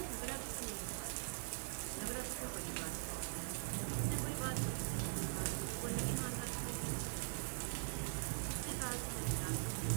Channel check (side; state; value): left; silent; digital silence